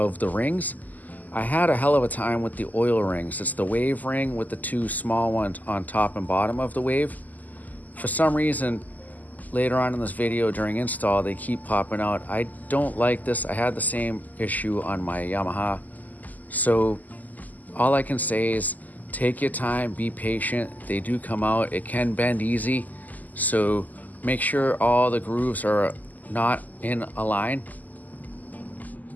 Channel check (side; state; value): right; late; 0.081 ms